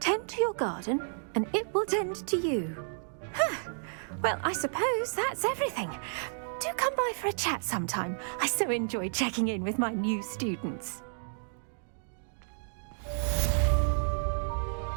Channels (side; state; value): left; silent; digital silence